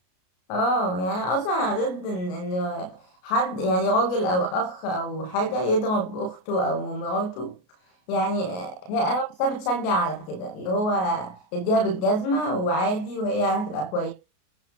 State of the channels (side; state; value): right; late; 33 ms